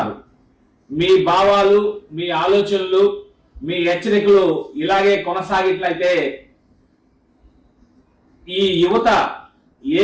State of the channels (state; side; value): identical; both; correlation 1.00